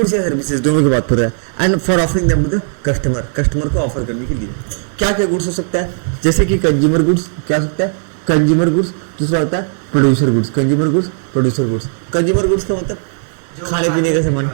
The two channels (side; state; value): left; silent; 65 dB below the other